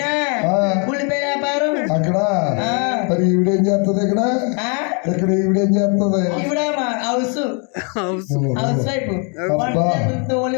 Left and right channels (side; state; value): right; quieter; 37.2 dB